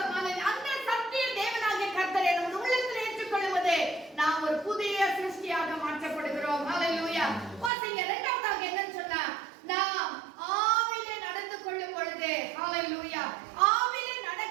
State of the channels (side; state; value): left; drops out; at 7.7 s